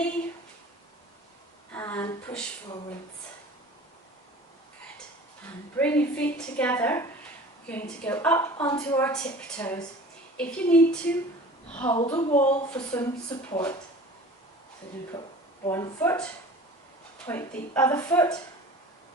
and push forwards. Good. And bring your feet together. We're going to go up onto our tiptoes. If you need to, hold a wall for some support. So you're going to put one foot, point the other foot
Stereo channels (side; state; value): both; normal; correlation 0.42